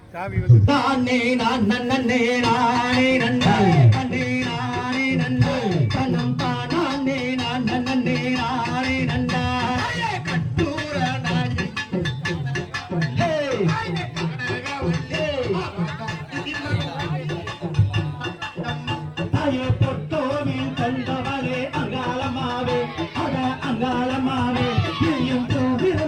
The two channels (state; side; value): identical; both; correlation 1.00